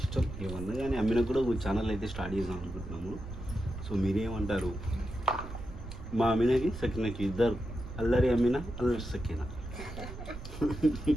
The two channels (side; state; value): right; noise; rumble, 10 dB below the sound